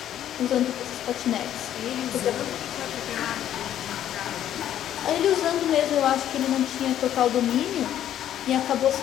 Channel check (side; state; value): right; quieter; 11.1 dB